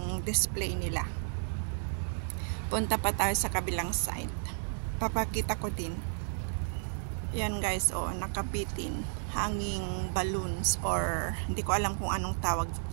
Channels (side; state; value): left; silent; digital silence